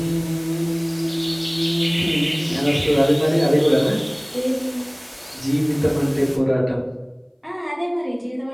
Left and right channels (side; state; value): both; identical; correlation 1.00